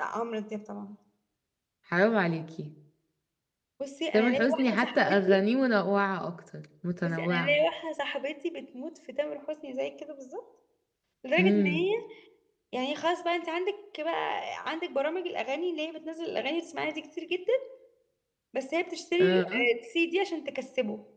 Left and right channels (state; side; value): identical; both; correlation 1.00